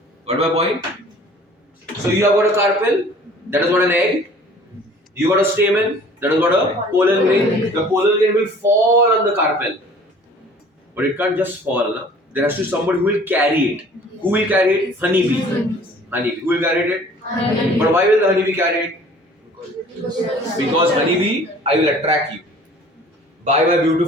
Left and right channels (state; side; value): normal; both; correlation 0.50